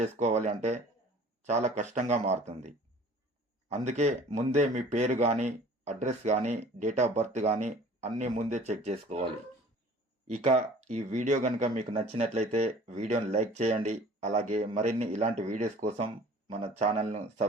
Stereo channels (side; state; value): both; normal; correlation 0.48